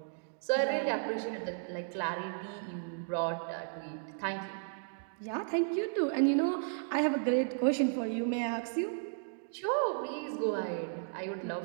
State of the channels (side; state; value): left; silent; digital silence